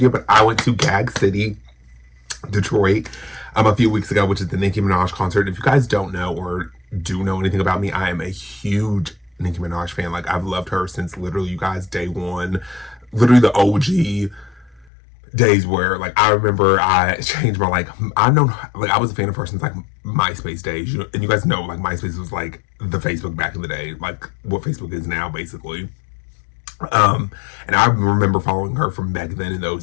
But I went to Gag City, Detroit, a few weeks ago, which is the Nicki Minaj concert. If you guys don't know or do know anything about me, I am a huge Nicki Minaj fan. Like, I've loved her since literally, you guys, day one, literally the OG days where, like, I remember I changed my, I was a fan of her since, like, MySpace days, and you guys know, like, MySpace was, like, the Facebook back in the day, like, what Facebook is now, basically. And I remember following her from back then in those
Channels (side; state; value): right; drops out; at 14.9 s